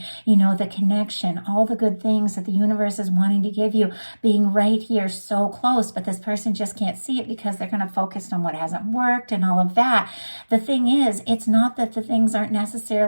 the connection, all the good things that the universe is wanting to give you, being right here so close, but this person just can't see it because they're kind of focused on what hasn't worked and all of that. The thing is, it's not that the things aren't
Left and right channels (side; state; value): both; inverted; correlation -1.00